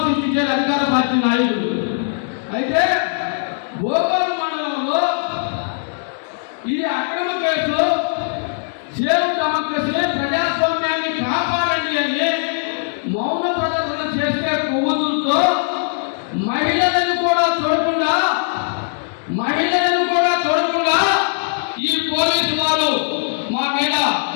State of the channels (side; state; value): right; silent; digital silence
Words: సృష్టించారు అధికార పార్టీ నాయకులు. అయితే భోపాల్ మండలంలో ఈ అక్రమ కేసు సేవ్ డెమోక్రసీ, ప్రజాస్వామ్యాన్ని కాపాడండి అని మౌన ప్రదర్శన చేసే కొవ్వొత్తులతో మహిళలను కూడా చూడకుండా ఈ పోలీసు వారు మా మీద